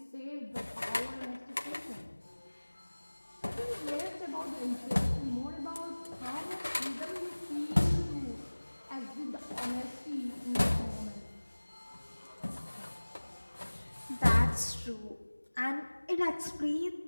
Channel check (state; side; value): inverted; both; correlation -1.00